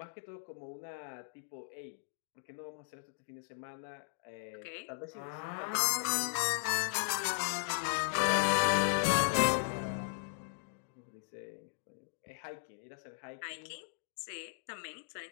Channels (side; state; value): right; silent; digital silence